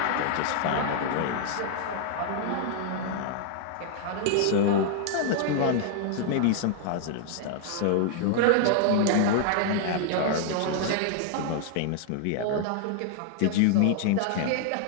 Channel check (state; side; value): different; both; correlation 0.00